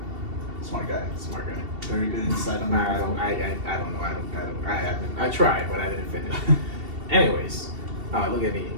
Smart guy. Smart guy. Very good insight on Nah, that. I don't know. I haven't. I tried, but I didn't finish. Anyways, look at me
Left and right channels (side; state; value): left; late; 2.7 ms